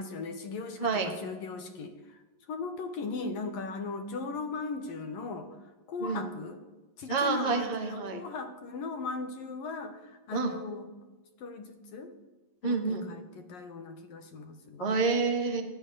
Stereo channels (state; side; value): late; right; 11 ms